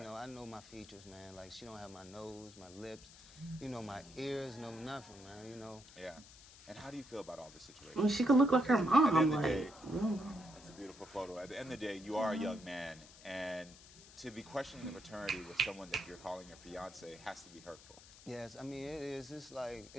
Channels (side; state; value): left; noise; hiss, 20 dB below the sound